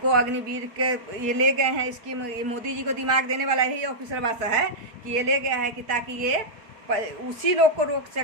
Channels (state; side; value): late; left; 4.5 ms